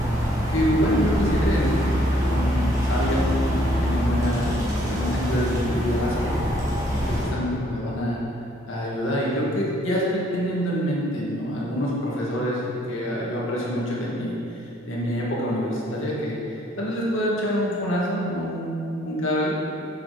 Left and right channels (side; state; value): both; normal; correlation 0.64